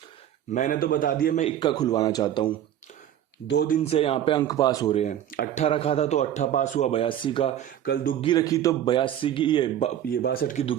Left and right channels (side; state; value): left; quieter; 10.9 dB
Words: मैंने तो बता दिया, मैं इक्का खुलवाना चाहता हूँ। 2 दिन से यहाँ पे अंक पास हो रहे हैं। 18 रखा था तो 18 पास हुआ 82 का। कल दुग्गी रखी तो 82 की ये 62 की